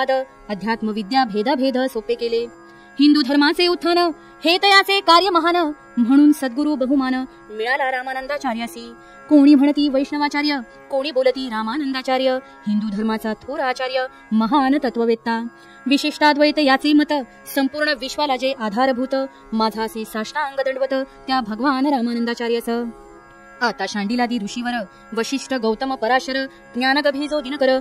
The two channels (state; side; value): identical; both; correlation 1.00